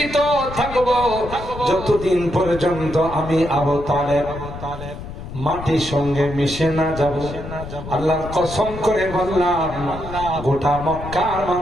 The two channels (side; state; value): left; noise; rumble, 11 dB below the sound